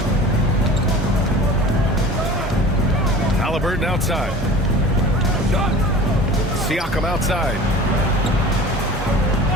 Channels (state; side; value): normal; both; correlation 0.40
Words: Halliburton outside. Siakam outside.